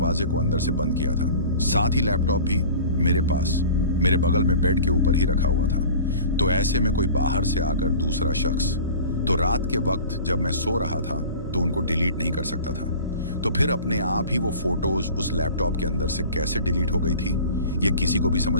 को अंदर से बंद किया था। साथ ही लैपटॉप भी मेरे पास मेरे बगल में बेड के ऊपर ही रखा हुआ था। तो ऐसे में कोई बाहर से आकर दूसरा शख्स तो रात के वक्त जब मैं सो रहा था तो उनको डिलीट नहीं कर सकता था। तो फिर अपने आप ही वो फोटोज उस लैपटॉप के अंदर से कैसे डिलीट हो गई थी ये किसी को भी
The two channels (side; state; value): both; inverted; correlation -0.41